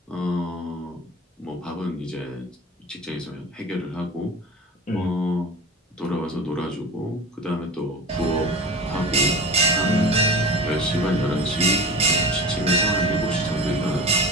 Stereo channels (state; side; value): normal; both; correlation 0.34